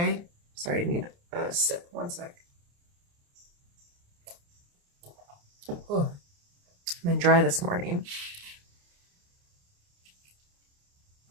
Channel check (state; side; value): late; left; 29 ms